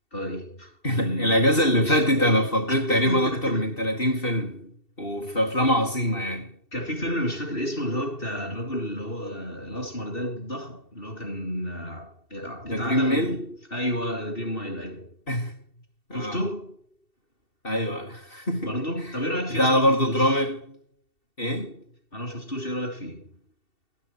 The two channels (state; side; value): late; right; 2.7 ms